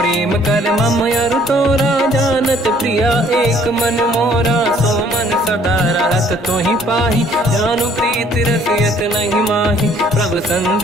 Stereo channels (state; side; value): normal; both; correlation 0.60